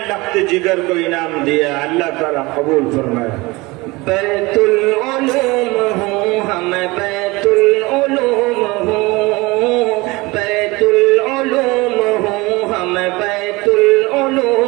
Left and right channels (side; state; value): left; quieter; 23.0 dB